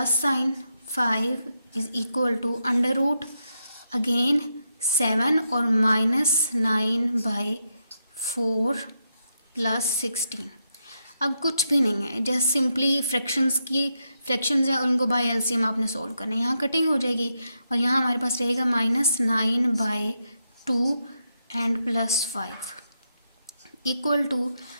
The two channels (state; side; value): inverted; both; correlation -0.83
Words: sign 5 is equal to √ again 7 और -9/4 + 16। अब कुछ भी नहीं है, जस्ट सिंपली फ्रैक्शंस है, उनको बाय एलसीएम आपने सोल्व करना है। यहाँ कटिंग हो जाएगी और यहाँ हमारे पास रहेगा -9/2 एंड +5 इक्वल टू,